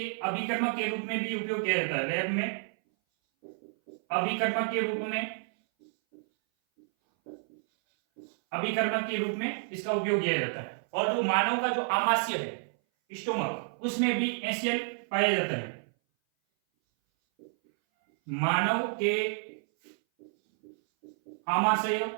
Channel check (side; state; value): left; silent; 58 dB below the other